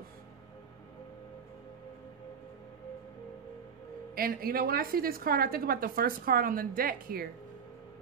And you know, when I see this card, I think about the first card on the deck here,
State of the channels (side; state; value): left; quieter; 6.8 dB